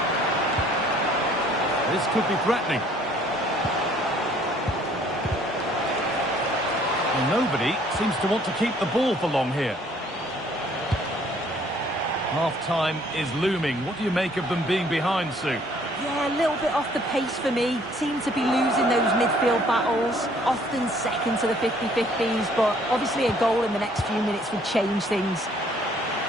This could be threatening. Well, nobody seems to want to keep the ball for long here. Half-time is looming. What do you make of them being behind, Sue? Yeah, a little bit off the pace for me. Seem to be losing those midfield battles. Often second to the 50-50s, but obviously a goal in the next few minutes would change things.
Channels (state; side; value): normal; both; correlation 0.60